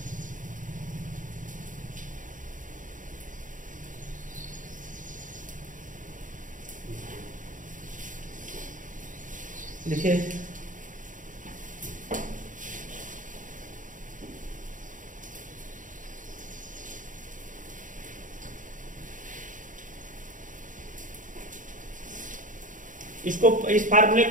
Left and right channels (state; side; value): late; left; 0.38 ms